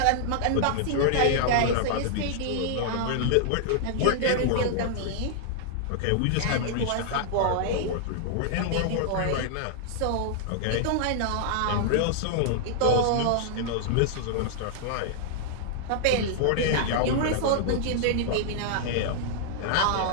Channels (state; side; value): different; both; correlation -0.01